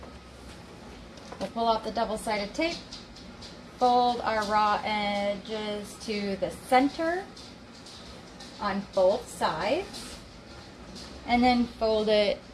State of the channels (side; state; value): both; identical; correlation 1.00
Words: We'll pull out the double-sided tape, fold our raw edges to the center on both sides, and then fold it